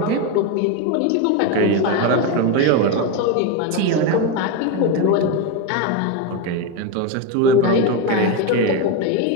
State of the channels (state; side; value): different; both; correlation 0.04